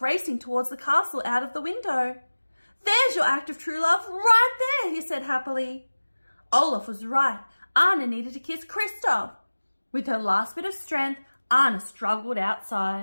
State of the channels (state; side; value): inverted; both; correlation -1.00